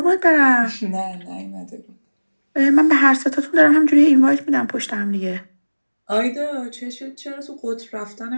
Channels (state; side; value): inverted; both; correlation -1.00